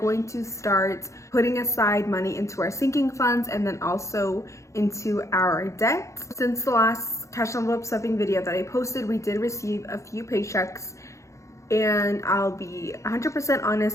to start putting aside money into our sinking funds and then also into our debt. Since the last cash envelope stuffing video that I posted, we did receive a few paychecks. And I'll be 100%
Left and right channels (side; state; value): right; late; 0.15 ms